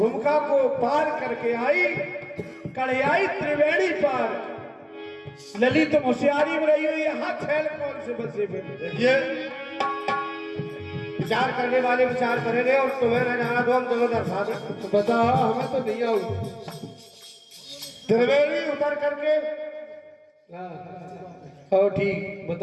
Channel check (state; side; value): identical; both; correlation 1.00